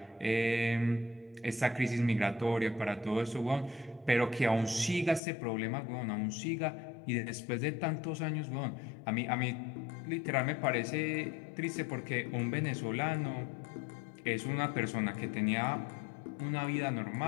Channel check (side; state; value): right; drops out; at 5.2 s